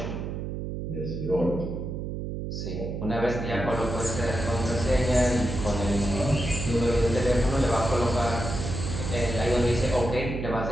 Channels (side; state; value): right; noise; hum, 5 dB below the sound